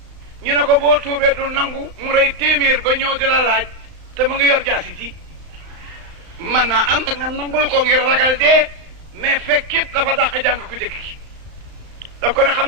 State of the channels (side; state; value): left; late; 35 ms